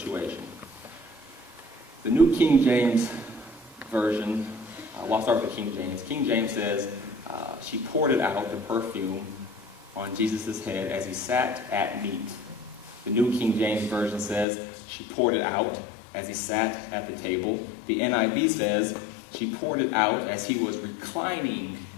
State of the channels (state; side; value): drops out; right; at 14.5 s